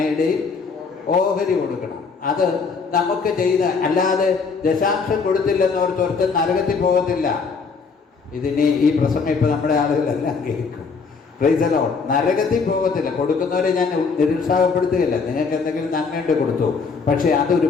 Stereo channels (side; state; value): right; quieter; 5.0 dB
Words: ഓഹരി കൊടുക്കണം. അത് നമുക്ക് ചെയ്ത, അല്ലാതെ ദശാംശം കൊടുത്തില്ലെന്നോർത്ത് ഒരുത്തൻ നരകത്തിൽ പോകത്തില്ല. ഇതിനി ഈ പ്രസംഗം ഇപ്പോൾ നമ്മുടെ ആളുകളെല്ലാം കേൾക്കും. Price the Lord. നരകത്തിൽ പോകത്തില്ല. കൊടുക്കുന്നവരെ ഞാൻ നിരുത്സാഹപ്പെടുത്തുകയില്ല. നിങ്ങൾക്ക് എന്തെങ്കിലും നന്മയുണ്ട് കൊടുത്തു, പക്ഷേ അതൊരു